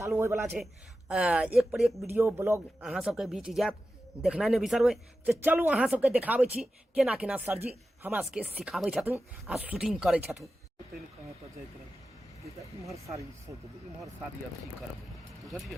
होय वाला छे। एक पर एक वीडियो ब्लॉग अहाँ सबके बीच जात, देखना नहीं बिसरबे। तो चलू अहाँ सबके देखाबै छी केना केना सरजी हमरा सबके सिखाबै छथुन आ शूटिंग करै छथुन। इम्हर साड़ी सोच इम्हर साड़ी अथी करबै,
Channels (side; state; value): both; normal; correlation 0.92